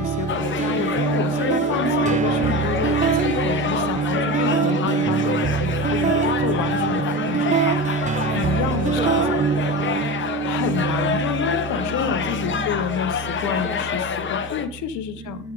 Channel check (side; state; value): both; normal; correlation 0.26